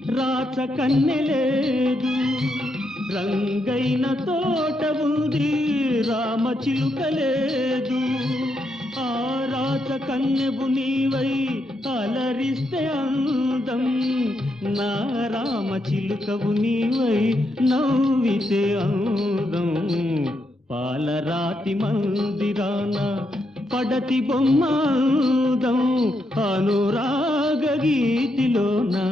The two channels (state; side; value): normal; both; correlation 0.80